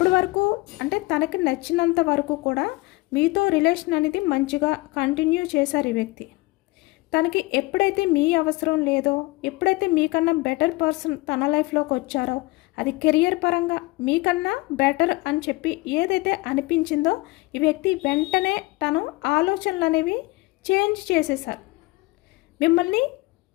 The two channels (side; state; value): right; quieter; 22.4 dB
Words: వరకు అంటే తనకి నచ్చినంత వరకు కూడా మీతో రిలేషన్ అనేది మంచిగా కంటిన్యూ చేశారు ఈ వ్యక్తి. తనకి ఎప్పుడైతే మీ అవసరం లేదో, ఎప్పుడైతే మీకన్నా బెటర్ పర్సన్ తన లైఫ్లోకి వచ్చారో, అది కెరియర్ పరంగా మీకన్నా బెటర్ అని చెప్పి ఏదైతే అనిపించిందో ఈ వ్యక్తి వెంటనే తను ఆలోచనలు అనేవి చేంజ్ చేసేసారు. మిమ్మల్ని